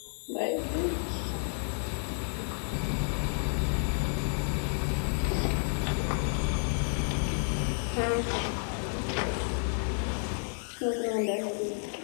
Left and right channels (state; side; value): silent; right; 57 dB below the other